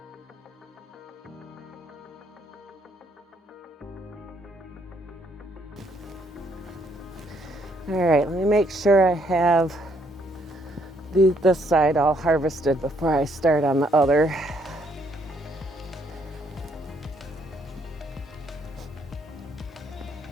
All right, let me make sure I have this side all harvested before I start on the other.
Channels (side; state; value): both; normal; correlation 0.70